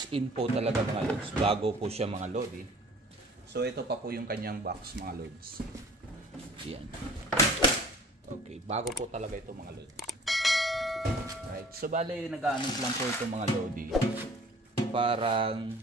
in po talaga mga lods, bago po siya mga lodi. So ito pa po yung kanyang box mga lods. Yan. Okay, bago po talaga ito mga lods. Right, so bale nag-aanos lang po ito mga lodi. Parang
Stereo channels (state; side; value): normal; both; correlation 0.49